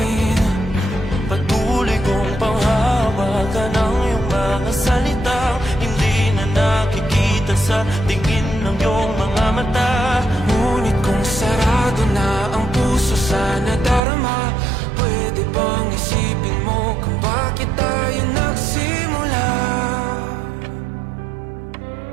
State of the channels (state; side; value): drops out; left; at 14.0 s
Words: Patuloy kong panghawakan ang iyong mga salitang hindi na nakikita sa tingin ng iyong mga mata. Ngunit kung sarado na ang puso sa nadarama, pwede bang isipin mo kung bakit tayo nagsimula?